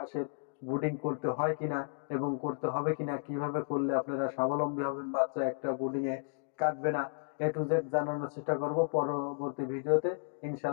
ব্রুডিং করতে হয় কিনা এবং করতে হবে কিনা, কিভাবে করলে আপনারা স্বাবলম্বী হবেন, বাচ্চা একটা ব্রুডিং এ কাটবে না, A to Z জানানোর চেষ্টা করব পরবর্তী ভিডিওতে।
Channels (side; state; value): right; silent; digital silence